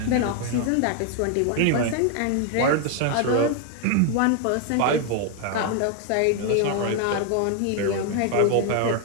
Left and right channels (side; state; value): both; different; correlation 0.00